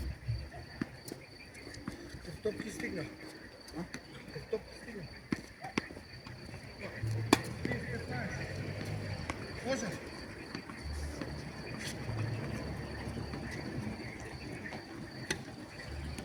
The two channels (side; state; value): both; identical; correlation 1.00